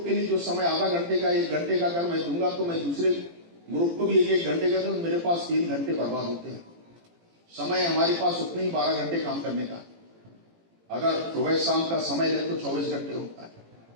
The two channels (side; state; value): left; late; 18 ms